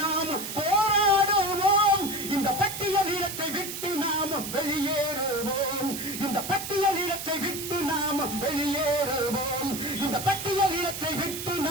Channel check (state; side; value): noise; right; hiss, 7 dB below the sound